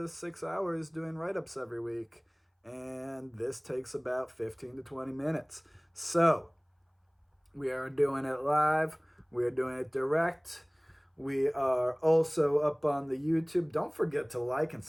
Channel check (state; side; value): identical; both; correlation 1.00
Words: 6 hours doing write ups every week. And this takes about 15 to 20 minutes. So, we are doing it live. We are doing it direct. We are also up on the YouTube. Don't forget to like and